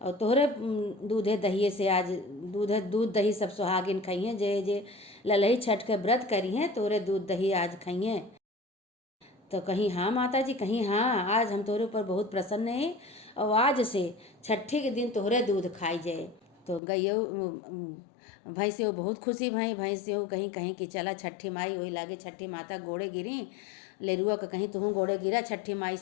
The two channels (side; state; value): right; drops out; at 16.8 s